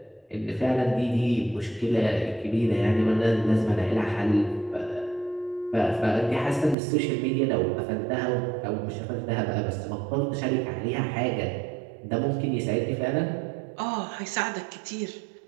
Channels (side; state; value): left; drops out; at 6.8 s